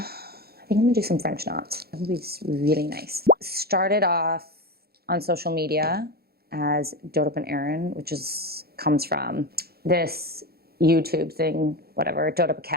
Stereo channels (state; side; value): late; left; 0.45 ms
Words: think I'm gonna do some French knots. That would be really nice. Started off on social media as Dope Up and Erin, which comes from this YouTube thing, whatever, Dope Up a